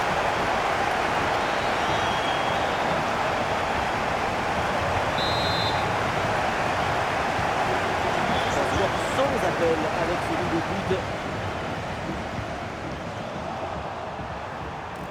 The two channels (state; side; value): identical; both; correlation 1.00